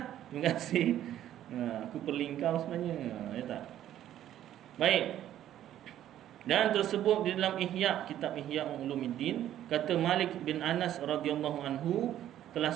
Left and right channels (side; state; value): left; quieter; 11.9 dB